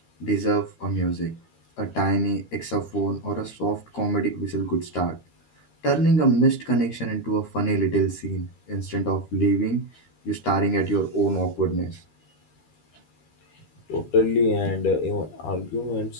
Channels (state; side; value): late; right; 13 ms